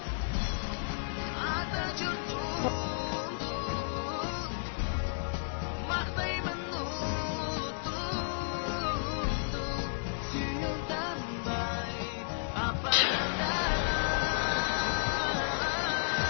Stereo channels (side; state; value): right; silent; digital silence